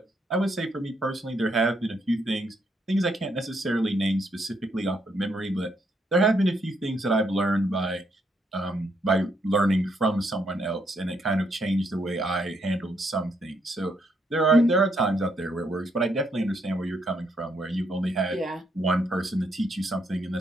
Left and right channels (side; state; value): both; normal; correlation 0.75